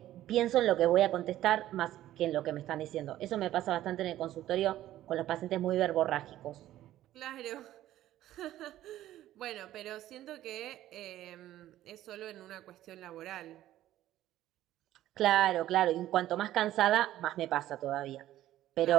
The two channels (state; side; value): quieter; left; 13.7 dB